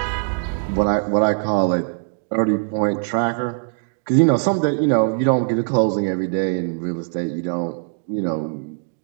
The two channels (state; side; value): silent; left; digital silence